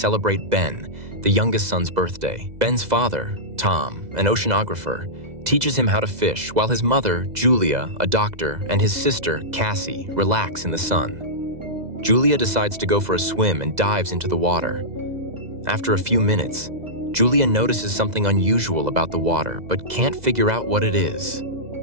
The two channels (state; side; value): late; left; 2.0 ms